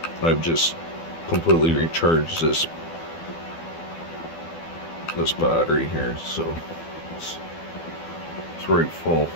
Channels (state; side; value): late; right; 12 ms